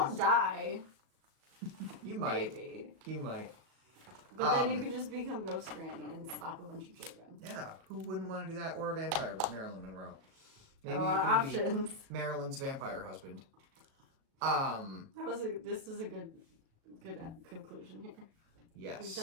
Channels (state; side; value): late; left; 37 ms